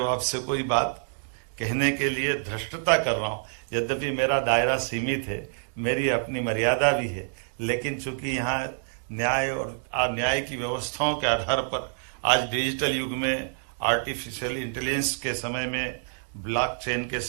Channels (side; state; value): left; silent; digital silence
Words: आपसे कोई बात कहने के लिए धृष्टता कर रहा हूं, यद्यपि मेरा दायरा सीमित है, मेरी अपनी मर्यादा भी है, लेकिन चूंकि यहाँ न्याय और न्याय की व्यवस्थाओं के आधार पर आज डिजिटल युग में, आर्टिफिशियल इंटेलिजेंस के समय में, ब्लॉकचेन के